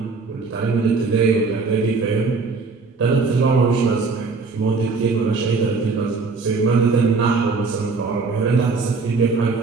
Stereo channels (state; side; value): quieter; left; 4.4 dB